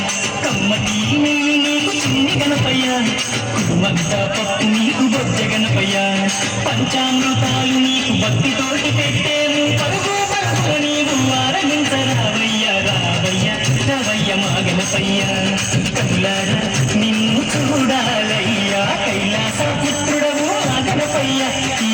కమ్మటి నెయ్యి నీకు చిన్ని గణపయ్య కుటుంబంతా పప్పు నీకు బొజ్జ గణపయ్య పంచామృతాలు నీకు భక్తితోటి పెట్టేము పరుగు పరుగు నీవు ఆరగించరావయ్య రావయ్య రావయ్య మా గణపయ్య కనులార నిన్ను చూడాలయ్యా కైలాస పుత్రుడవు మా గణపయ్య ఈ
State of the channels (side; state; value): both; identical; correlation 1.00